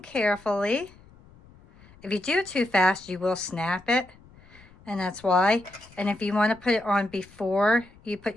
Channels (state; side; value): noise; left; rumble, 25 dB below the sound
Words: carefully. If you do it too fast, you will snap it, and that's why. And if you want to put it on before you put